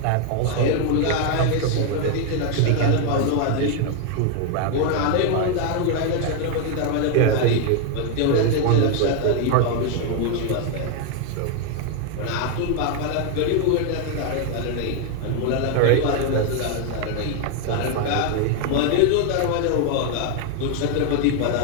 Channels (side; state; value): both; different; correlation 0.00